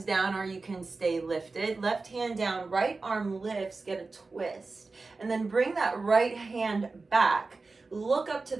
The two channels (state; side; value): quieter; left; 3.8 dB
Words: down, or you can stay lifted. Left hand down, right arm lifts, get a twist. And then bring that right hand back. Look up to